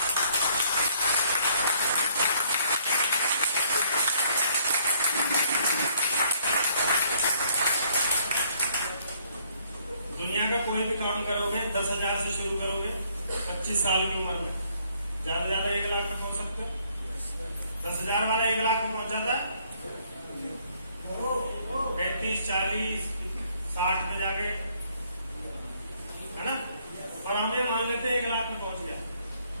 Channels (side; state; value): both; inverted; correlation -0.66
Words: दुनिया का कोई भी काम करोगे 10,000 से शुरू करोगे 25 साल की उम्र में, ज्यादा ज्यादा 1 लाख में पहुंच सकते हो। 10,000 वाला 1 लाख में पहुंच जाता है। 35, 40, 60 में जाके, है ना? और हमें मान लेते हैं 1 लाख में पहुंच गया।